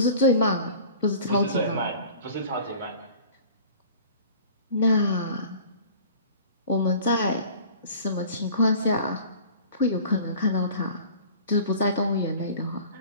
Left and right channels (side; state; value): both; inverted; correlation -0.44